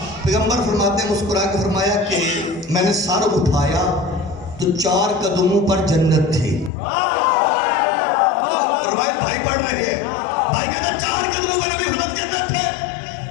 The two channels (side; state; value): right; drops out; at 6.7 s